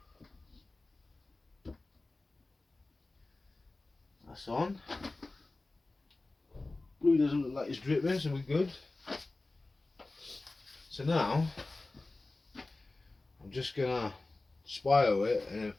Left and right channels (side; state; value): right; quieter; 3.2 dB